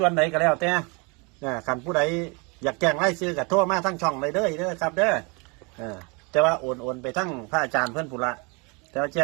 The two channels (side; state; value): left; quieter; 30.9 dB